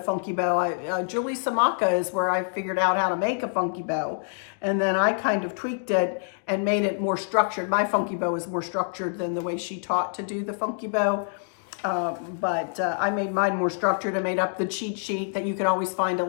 funky bow. Julie Samaka is where I figured out how to make a funky bow. And then I kind of tweaked it and made it more structured. My funky bow is more structured than the way she taught to do the funky bow. But I made mine more structured. I made up the cheat sheet that you can always find a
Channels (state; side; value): silent; right; 61 dB below the other